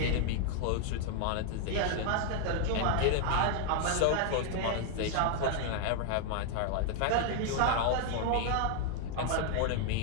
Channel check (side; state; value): both; different; correlation 0.00